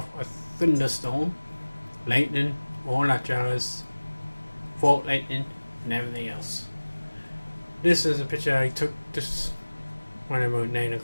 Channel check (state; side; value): inverted; both; correlation -1.00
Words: a thunderstorm, lightning, all that jazz, fault lightning, and everything else. This is a picture I took just when about 9